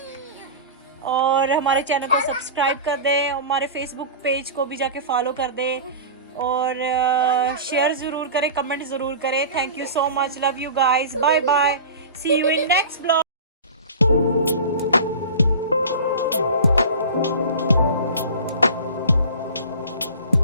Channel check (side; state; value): both; inverted; correlation -0.34